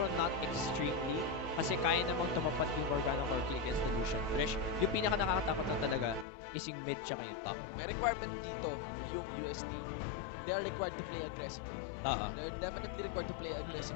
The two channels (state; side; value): drops out; right; at 6.2 s